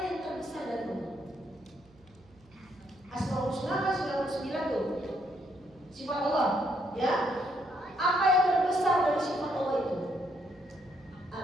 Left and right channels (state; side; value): noise; right; hum, 28 dB below the sound